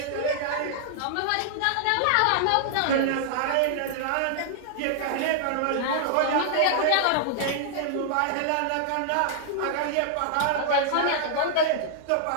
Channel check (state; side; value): different; both; correlation -0.01